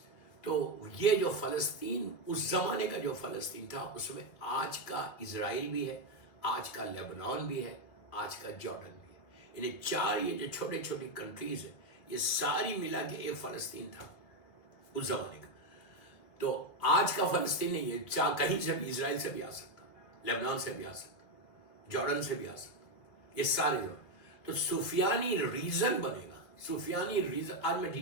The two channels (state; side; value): late; right; 2.2 ms